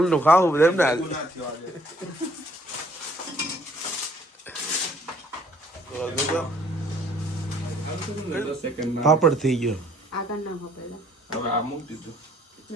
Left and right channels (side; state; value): both; normal; correlation 0.61